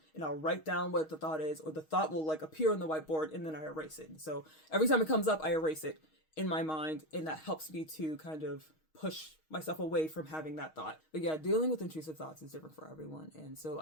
and I'll write down what the thought is, or the thought will like appear on the whiteboard and then I erase it. So every time it comes up, I erase it in my mind, and that helps me to kind of push myself away from having that thought. But yeah, dealing with intrusive thoughts is different for everyone. And so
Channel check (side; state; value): right; late; 6.4 ms